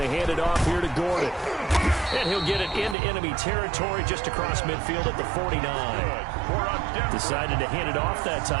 hand it off here to Gordon. And he'll get it into enemy territory just across midfield at the 49. Decided to hand it off that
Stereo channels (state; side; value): drops out; left; at 3.0 s